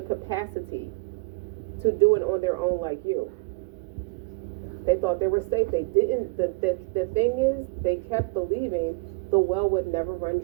capacity to do it on their own like you. They thought they were safe. They didn't. The thing is, they kept believing the well would never run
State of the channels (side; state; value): left; quieter; 27.4 dB